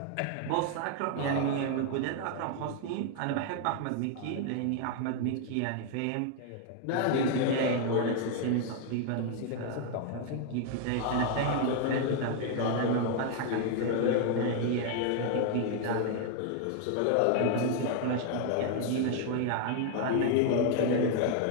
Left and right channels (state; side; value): different; both; correlation 0.00